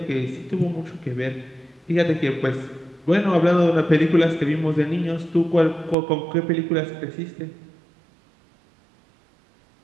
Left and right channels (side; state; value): left; drops out; at 6.0 s